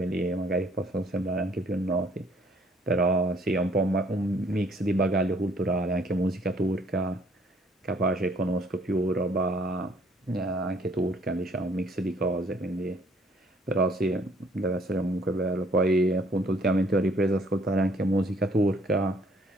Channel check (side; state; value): both; normal; correlation 0.62